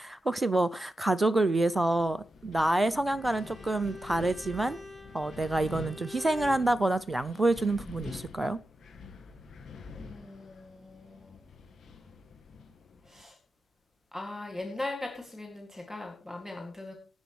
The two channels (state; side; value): normal; both; correlation 0.90